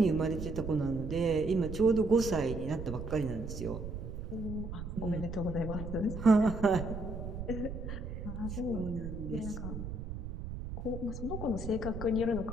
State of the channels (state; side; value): noise; right; rumble, 7 dB below the sound